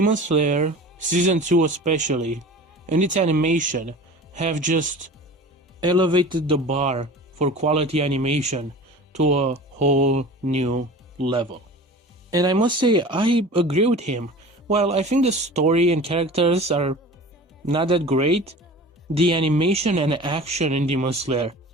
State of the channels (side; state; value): both; normal; correlation 0.39